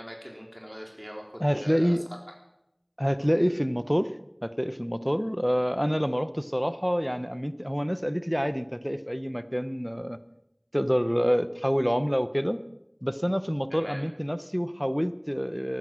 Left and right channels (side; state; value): both; identical; correlation 1.00